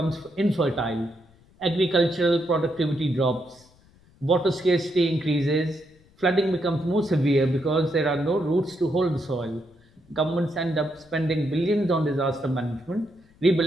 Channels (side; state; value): left; noise; rumble, 30 dB below the sound